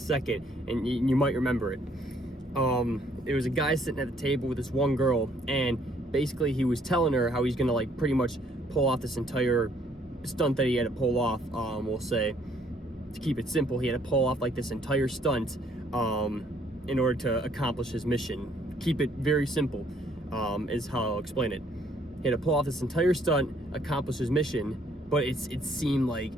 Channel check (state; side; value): normal; both; correlation 0.65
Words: and you might remember it. It was a guy sitting at the table with this one girl, and basically he was telling her how he's gonna like pretty much pull off this entire stunt that he had to pull off. We'll say, to keep it simple, he had to pull off like this entire stunt in order to accomplish his mission. Keep it very simple, is how I'll explain it. He had to pull off this entire stunt, accomplish his mission, but it seemed like